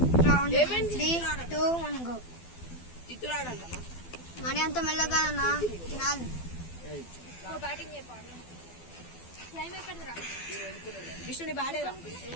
3, 2, 1 గో. మరి అంత మెల్లగా అన్నా తినాలి.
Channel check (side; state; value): right; late; 12 ms